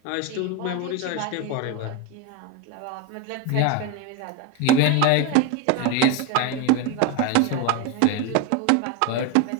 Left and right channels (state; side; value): different; both; correlation 0.03